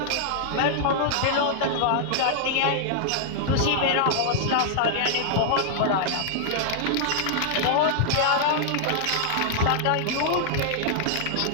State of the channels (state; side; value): different; both; correlation -0.01